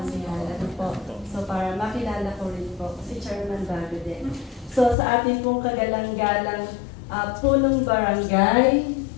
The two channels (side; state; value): right; drops out; at 5.0 s